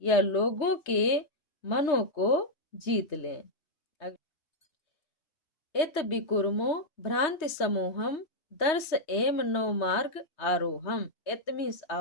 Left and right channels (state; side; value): late; right; 3.2 ms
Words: या लोगों के मनों को जीत लें। इत विकुर्मो भ्रांति समूहम, दर्श एम नौ मार्ग आरोहम। इत मीन्स